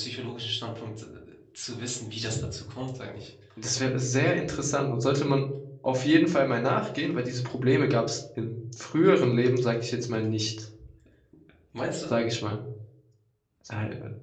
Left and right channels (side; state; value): both; identical; correlation 1.00